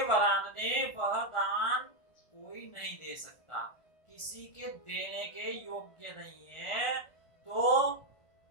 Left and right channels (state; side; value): late; right; 1.4 ms